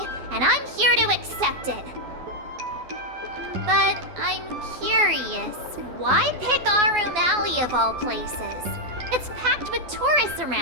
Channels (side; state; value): left; late; 12 ms